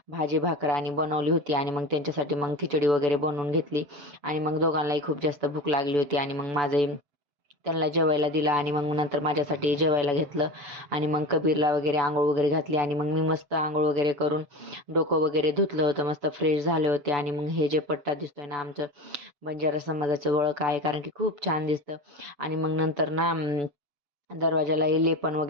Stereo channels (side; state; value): left; late; 6.9 ms